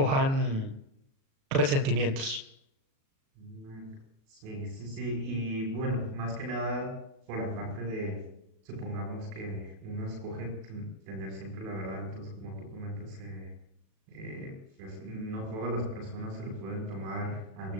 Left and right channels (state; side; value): late; left; 37 ms